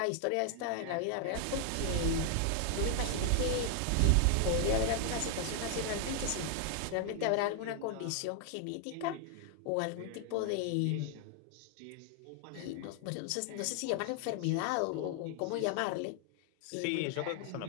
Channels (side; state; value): both; different; correlation 0.00